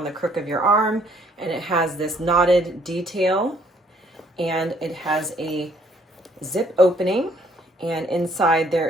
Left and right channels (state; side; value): normal; both; correlation 0.64